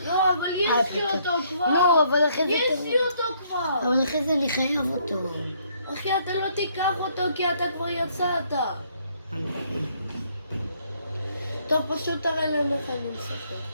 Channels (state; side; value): inverted; both; correlation -0.68